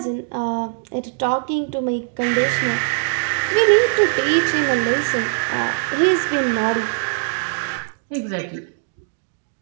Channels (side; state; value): left; silent; digital silence